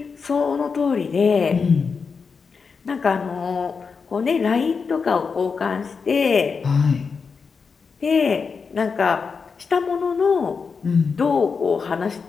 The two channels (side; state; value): right; quieter; 5.3 dB